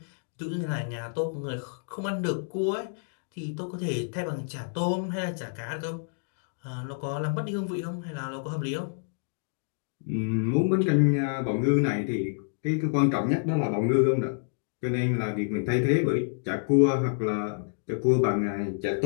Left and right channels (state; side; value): silent; right; digital silence